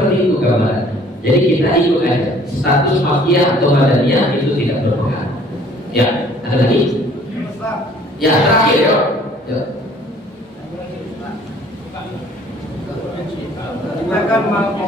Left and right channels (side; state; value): both; normal; correlation 0.56